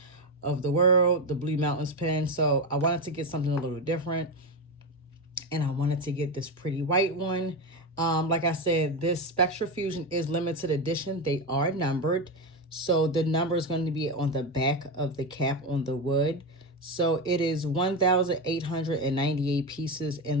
of the World, the Blue Mountains pen. So I wanted to get something a little different. And I wanted to get this pretty white one. Like I said, this Spectra Fusion is limited edition. They are numbered. So the number is going to be on the back of the cap on the wood. So it is 1,898 pieces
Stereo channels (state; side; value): normal; both; correlation 0.14